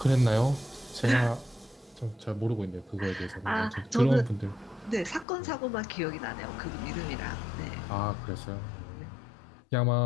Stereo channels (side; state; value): right; drops out; at 5.2 s